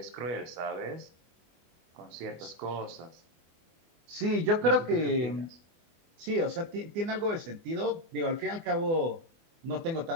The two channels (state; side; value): late; left; 24 ms